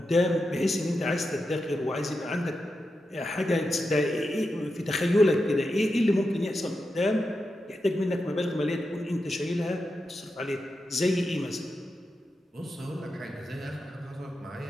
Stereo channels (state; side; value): normal; both; correlation 0.88